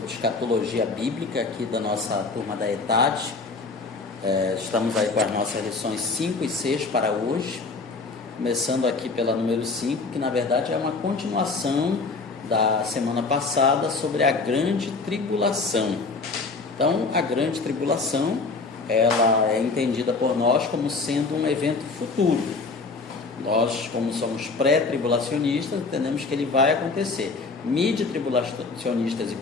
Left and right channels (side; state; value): right; quieter; 4.0 dB